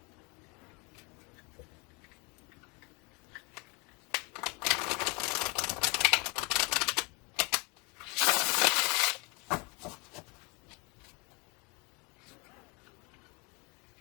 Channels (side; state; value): right; quieter; 29.8 dB